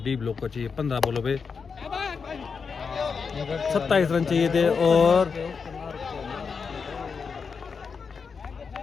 डी ब्लॉक को चाहिए 15 बॉलों पे 27 रन चाहिए थे और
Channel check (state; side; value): quieter; right; 5.5 dB